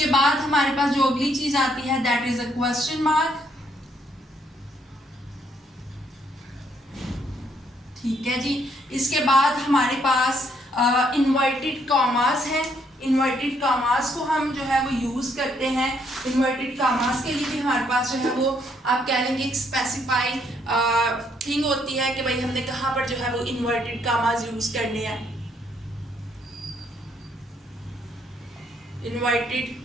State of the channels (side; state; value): both; normal; correlation 0.71